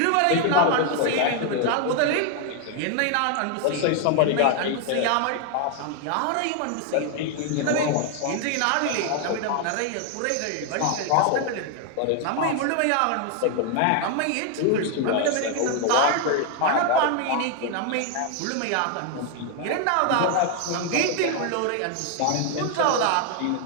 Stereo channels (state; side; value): different; both; correlation 0.01